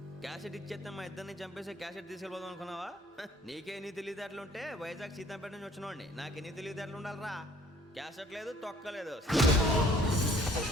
క్యాసెట్ ఇచ్చేస్తే మా ఇద్దరిని చంపేసి క్యాసెట్ తీసుకెళ్ళిపోదాం అనుకున్నావా? నీకే ఎన్ని తెలివితేటలు ఉంటే వైజాగ్ సీతంపేట నుంచి వచ్చినవాడిని నాకు ఎన్ని తెలివితేటలు ఉండాలరా? క్యాసెట్ లేదు, తొక్కలేదు.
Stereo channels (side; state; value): both; normal; correlation 0.57